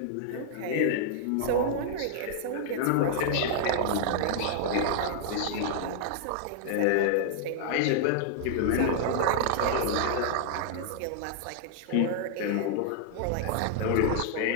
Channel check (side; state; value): both; different; correlation -0.01